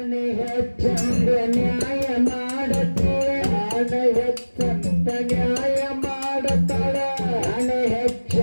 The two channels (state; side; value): inverted; both; correlation -1.00